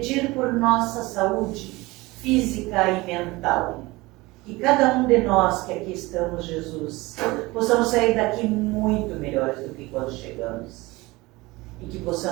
por nossa saúde física e mental. Que cada um de nós que aqui estamos, Jesus, possamos sair daqui muito melhores do que quando chegamos. E que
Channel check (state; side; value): quieter; left; 21.6 dB